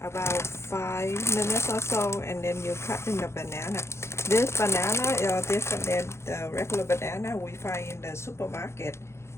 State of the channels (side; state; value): right; late; 0.13 ms